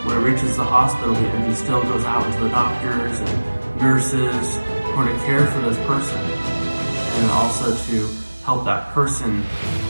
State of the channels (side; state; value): both; inverted; correlation -1.00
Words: when it reaches the hospital, the energy still goes out to the doctors and nurses who are to care for this person, and also to help that person